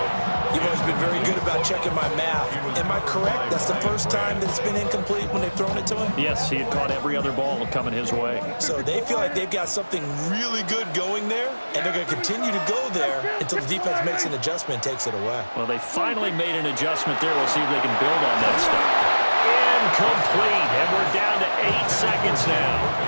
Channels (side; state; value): both; inverted; correlation -1.00